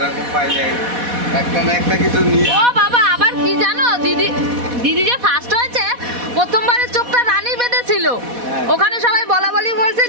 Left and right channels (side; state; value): left; late; 4.1 ms